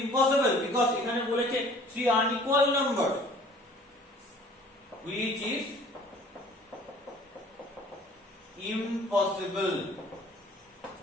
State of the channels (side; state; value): both; normal; correlation 0.52